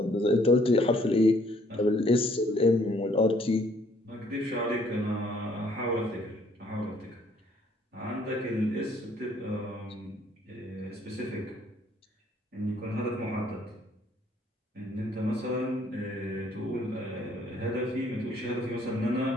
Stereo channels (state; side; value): normal; both; correlation 0.63